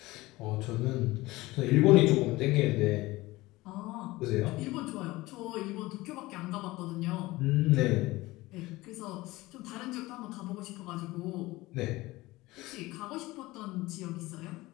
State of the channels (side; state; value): right; quieter; 19.7 dB